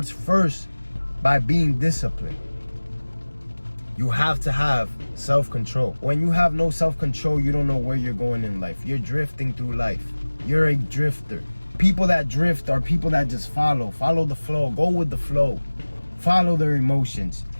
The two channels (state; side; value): inverted; both; correlation -1.00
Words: first by being disciplined. You have to have self-control. When you have no self-control, you don't know where you're going in life. You're drifting through life. You're a drifter. People that drift are people that just follow the flow, go with the flow, follow their emotions.